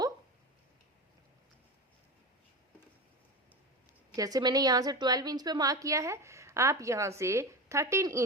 जैसे मैंने यहां से 12 इंच पे मार्क किया है, आप यहां से 13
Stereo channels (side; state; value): both; normal; correlation 0.24